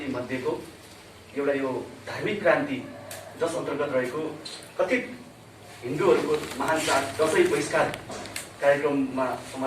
मध्येको एउटा यो धार्मिक क्रान्ति जस अन्तर्गत रहेको कथित हिन्दूहरूको महान चाड दशैं बहिष्कार कार्यक्रममा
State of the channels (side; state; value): both; identical; correlation 1.00